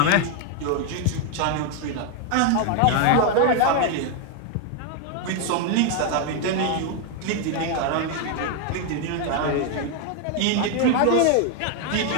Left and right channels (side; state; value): both; different; correlation 0.01